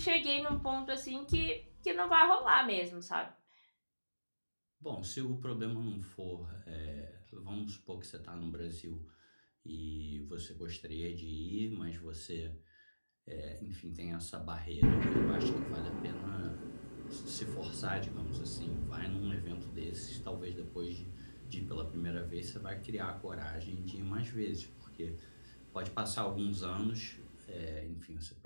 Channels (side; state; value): both; inverted; correlation -1.00